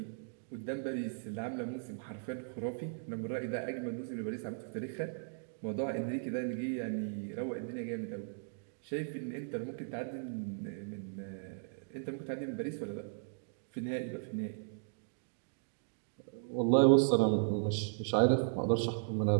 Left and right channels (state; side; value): silent; left; digital silence